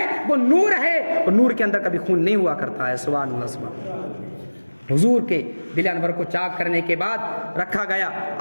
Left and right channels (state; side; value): inverted; both; correlation -1.00